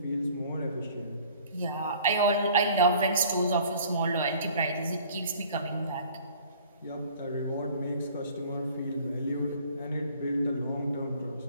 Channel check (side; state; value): both; inverted; correlation -0.52